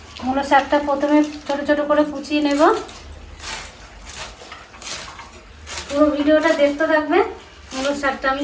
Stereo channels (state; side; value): identical; both; correlation 1.00